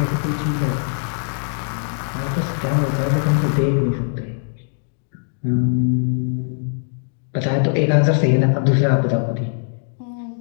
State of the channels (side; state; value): right; silent; digital silence